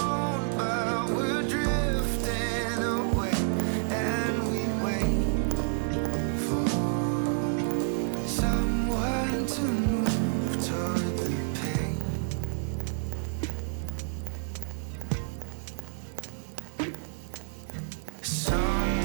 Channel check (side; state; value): left; silent; digital silence